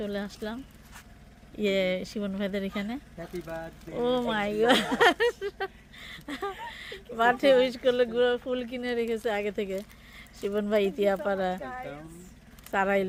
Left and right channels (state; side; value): identical; both; correlation 1.00